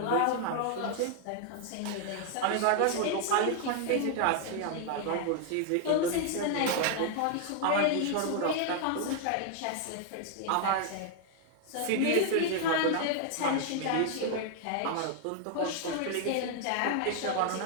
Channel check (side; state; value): both; different; correlation 0.00